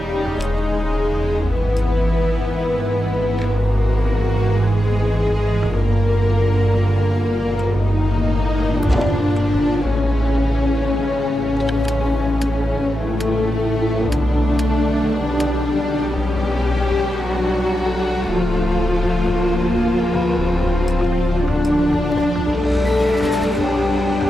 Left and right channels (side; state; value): both; normal; correlation 0.89